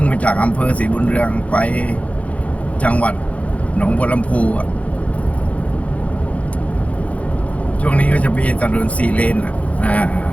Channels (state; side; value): late; right; 0.066 ms